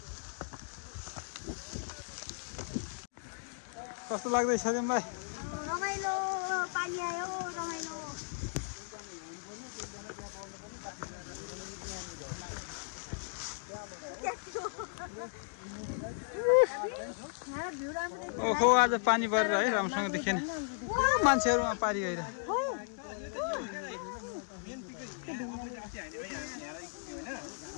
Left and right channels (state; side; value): silent; right; digital silence